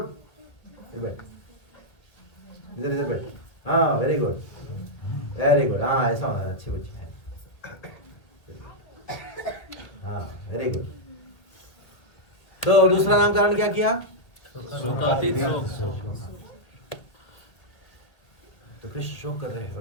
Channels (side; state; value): right; late; 2.0 ms